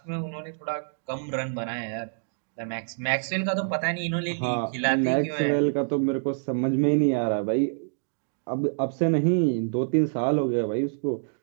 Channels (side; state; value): left; silent; digital silence